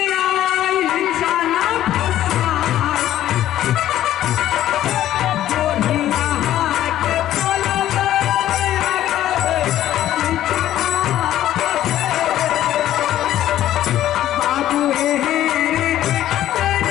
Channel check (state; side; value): quieter; right; 12.8 dB